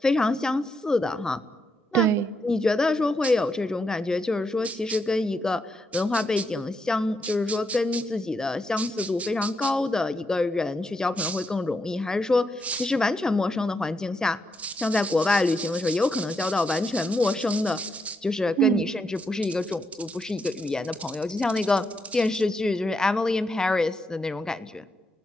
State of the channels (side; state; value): both; normal; correlation 0.81